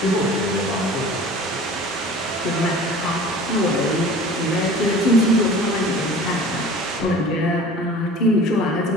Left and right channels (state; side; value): normal; both; correlation 0.43